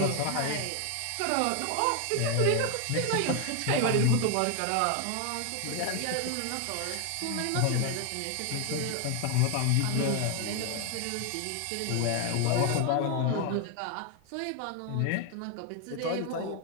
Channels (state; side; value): different; both; correlation 0.01